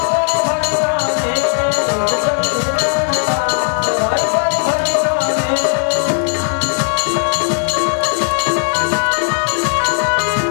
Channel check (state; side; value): silent; right; digital silence